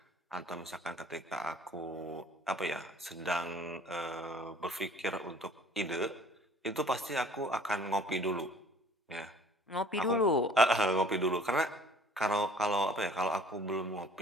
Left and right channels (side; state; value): both; normal; correlation 0.52